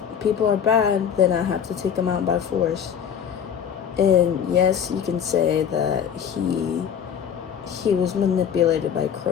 people are bad, then I have to take them out by force. And yes, you can say that he was manipulated by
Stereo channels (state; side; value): quieter; right; 8.2 dB